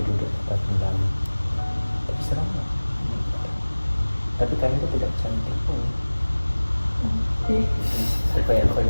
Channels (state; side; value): inverted; both; correlation -1.00